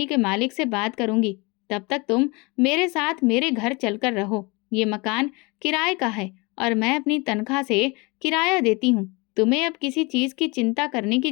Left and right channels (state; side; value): quieter; right; 27.0 dB